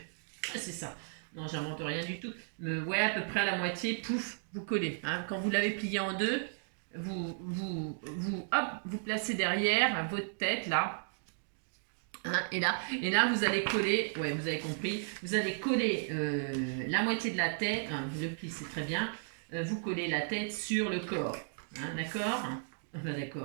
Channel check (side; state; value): left; silent; digital silence